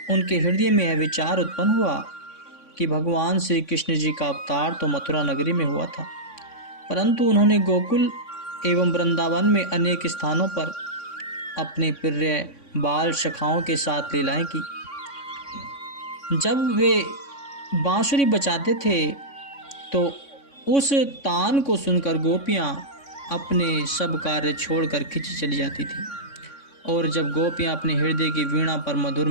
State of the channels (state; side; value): late; right; 3.6 ms